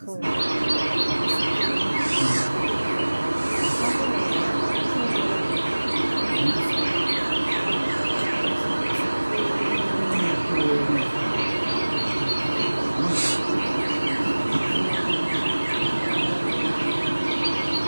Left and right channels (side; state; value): both; inverted; correlation -1.00